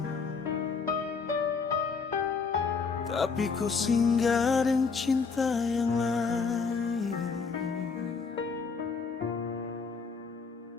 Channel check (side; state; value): right; quieter; 5.1 dB